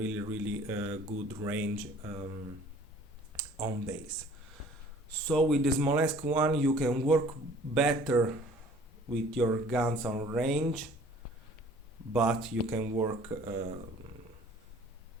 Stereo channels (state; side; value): normal; both; correlation 0.52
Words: good range on base. So with the Smolensk one you can work better with your guns on range, but you can work